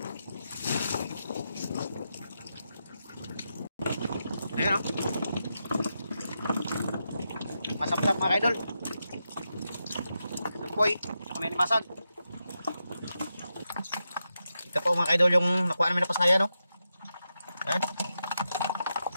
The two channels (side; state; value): both; inverted; correlation -0.87